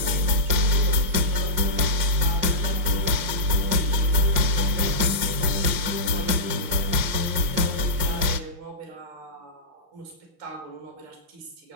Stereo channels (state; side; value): late; left; 5.7 ms